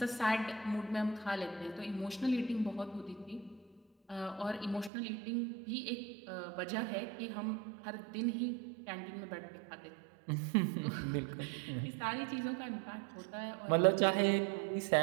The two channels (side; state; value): left; drops out; at 4.9 s